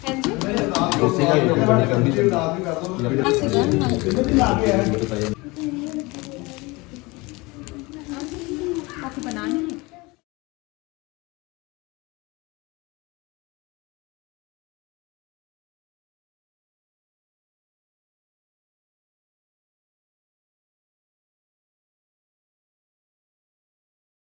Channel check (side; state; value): right; quieter; 24.2 dB